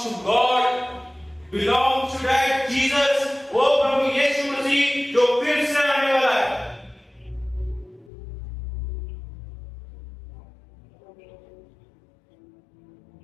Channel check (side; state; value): right; drops out; at 8.1 s